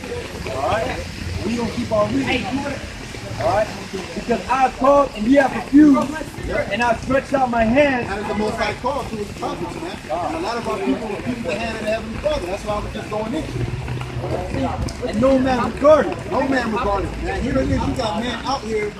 All right, we gonna keep on reading. All right, because I called and ye have refused, and I stretched out my hand. That is the most high call to his prophets, man. And a lot of our people refuse the hand of the Heavenly Father. That's why I was just going in. And no man regarded. No man regarded, man. Here it is, you got man out here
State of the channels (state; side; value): identical; both; correlation 1.00